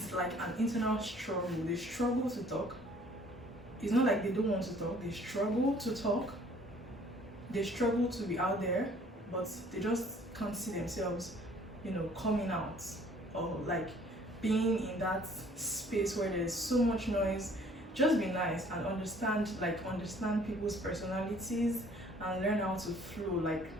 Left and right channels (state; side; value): normal; both; correlation 0.57